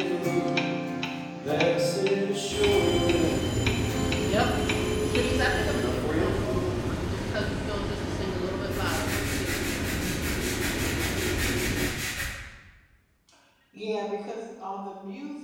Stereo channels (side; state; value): both; identical; correlation 1.00